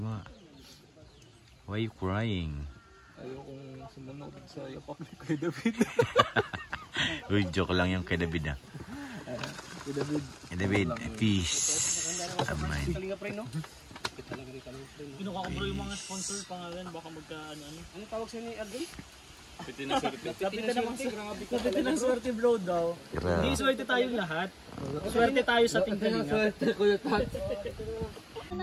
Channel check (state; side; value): identical; both; correlation 1.00